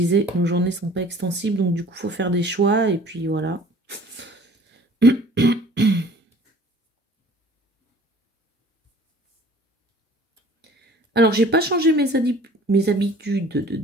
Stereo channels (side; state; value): both; normal; correlation 0.50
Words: nos journées sont pas extensibles, donc du coup, il faut faire des choix, et puis voilà. Alors, j'ai pas changé mes habitudes de